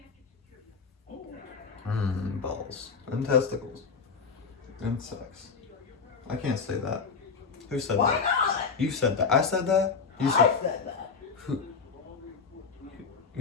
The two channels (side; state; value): right; quieter; 5.4 dB